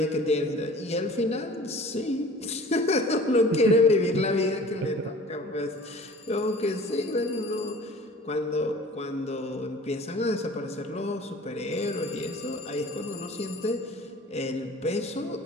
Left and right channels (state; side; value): normal; both; correlation 0.44